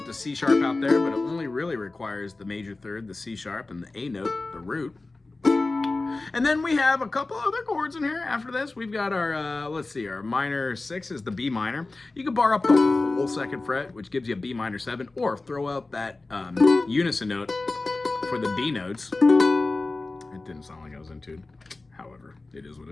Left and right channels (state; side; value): quieter; right; 3.3 dB